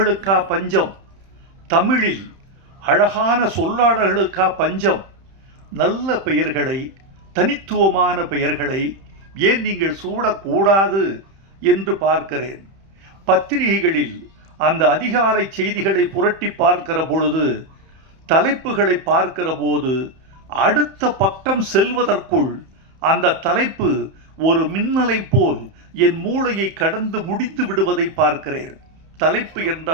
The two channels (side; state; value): left; late; 31 ms